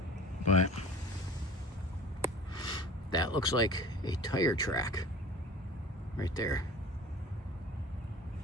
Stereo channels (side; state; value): both; normal; correlation 0.42